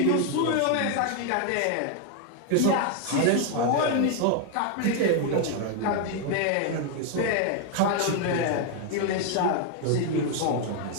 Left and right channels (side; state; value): both; different; correlation 0.00